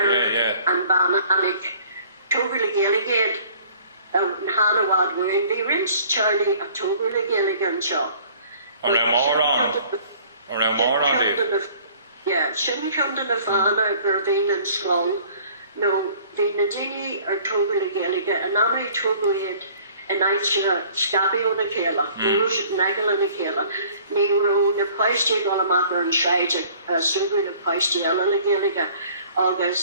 and Bannanig. Toby the Gaeilge out in Hanawad were in the rinse Charlie of Toby the Gaeilge shop. Or a moron. Yeah, shouldn't come to the fan or Bervin and Skull. No, the Nadini or Toby the Gaeilge, and now we Toby and I scabbie on the chéile, Russian Nagel on the chéile. Nero, the Paisty Golamaka and Shide, Super the Paisty Ella the Gaeilge,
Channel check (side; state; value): both; inverted; correlation -0.53